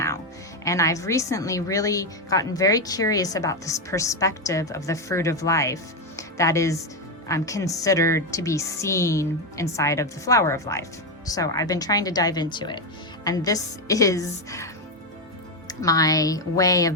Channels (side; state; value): both; normal; correlation 0.08